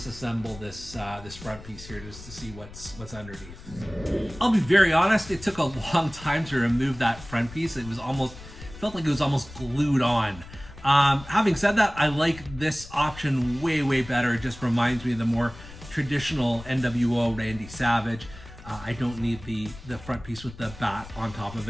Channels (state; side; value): noise; left; rumble, 16 dB below the sound